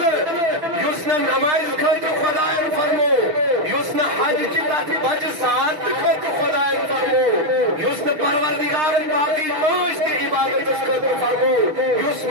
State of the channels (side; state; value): left; late; 6.5 ms